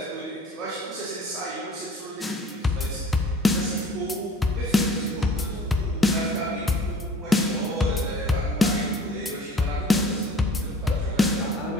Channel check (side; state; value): both; normal; correlation 0.47